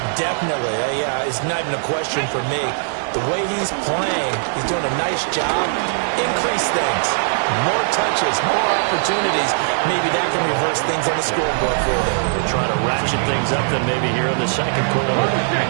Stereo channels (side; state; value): left; silent; digital silence